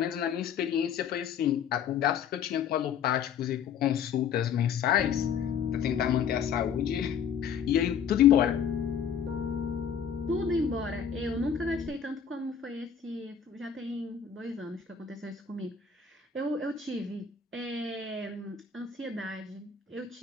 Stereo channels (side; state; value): right; quieter; 7.4 dB